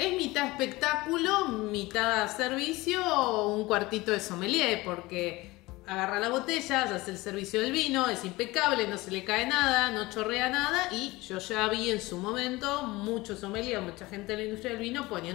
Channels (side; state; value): right; quieter; 20.7 dB